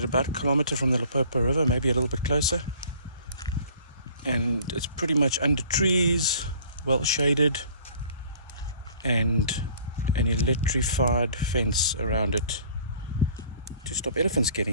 about a kilometer from the Limpopo River, maybe a little bit closer. And it's pretty much under trees, well shaded, and an electrified fence around it to stop elephants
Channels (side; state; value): both; inverted; correlation -0.52